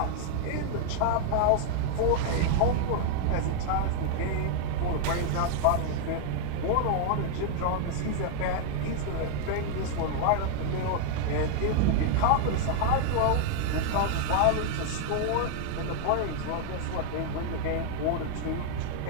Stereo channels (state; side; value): different; both; correlation 0.00